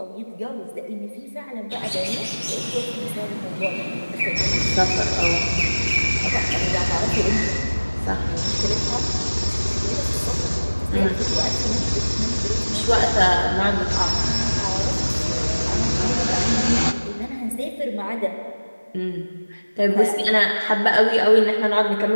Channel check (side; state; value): both; inverted; correlation -1.00